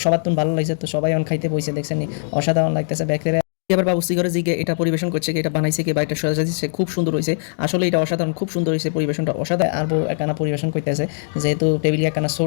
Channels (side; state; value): right; silent; digital silence